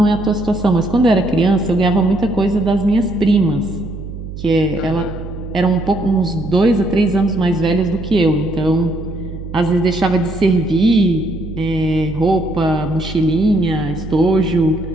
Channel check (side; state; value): right; noise; hum, 10 dB below the sound